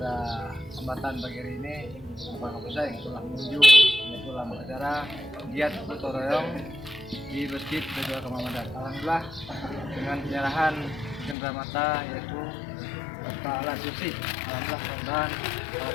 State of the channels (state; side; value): drops out; right; at 11.4 s